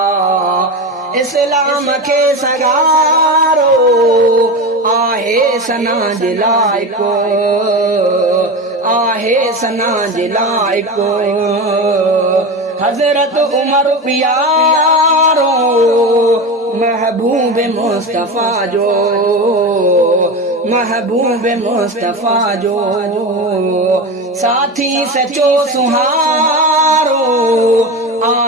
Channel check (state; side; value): normal; both; correlation 0.23